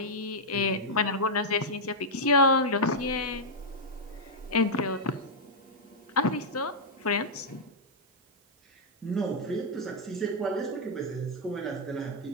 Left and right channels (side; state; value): both; normal; correlation -0.05